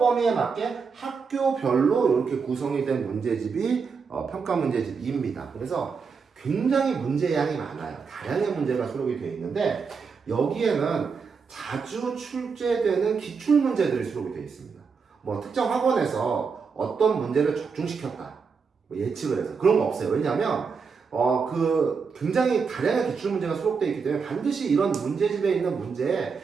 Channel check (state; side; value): quieter; left; 5.5 dB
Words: 맞게 학교별로 이렇게 구성이 된 문제집이 평가 문제집 2입니다. 그래서 굉장히 문제량이 많아요. 다양한 문제가 수록이 되어 있는데 여기에는 자주 출제되는 기출 문제들이 수록이 되어 있습니다. 뭐 특정 학원에서 어떤 문제를 적중시켰다 뭐 예측을 해서 그런 거 없어요. 왜냐하면 굉장히 다양한 기출 문제가 수록되어 있기 때문에 반드시 이런 문제집에 있는 문제에